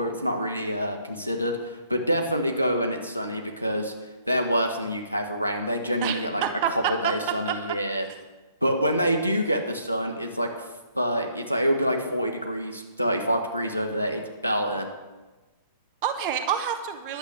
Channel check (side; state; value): both; inverted; correlation -0.65